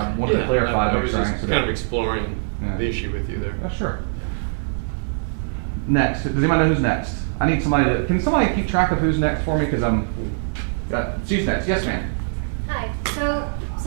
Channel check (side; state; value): left; silent; digital silence